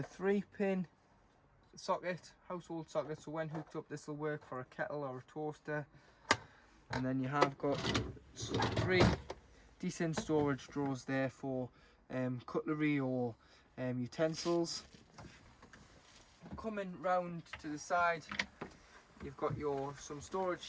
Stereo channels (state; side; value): identical; both; correlation 1.00